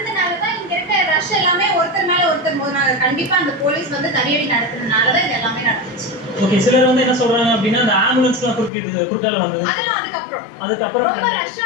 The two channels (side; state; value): right; drops out; at 8.7 s